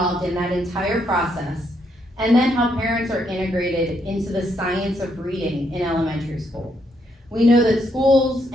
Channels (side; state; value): both; normal; correlation 0.75